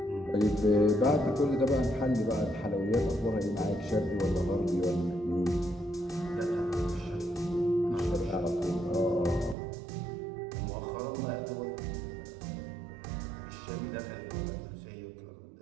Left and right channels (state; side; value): drops out; left; at 9.6 s